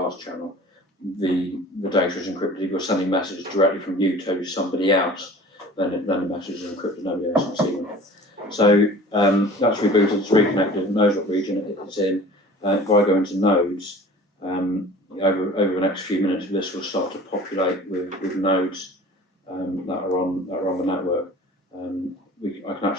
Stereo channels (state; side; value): normal; both; correlation 0.44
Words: channel, the data is encrypted. If you're sending messages directly from you to somebody else, then the messages are encrypted. Nobody else can see them. So that's rebooted, it's reconnected, it knows what region it's in. If I go into nodes, over the next few minutes, this will start to populate with nodes that are on the network. I can